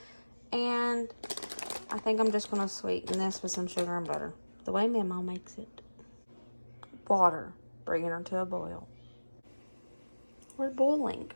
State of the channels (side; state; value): both; inverted; correlation -1.00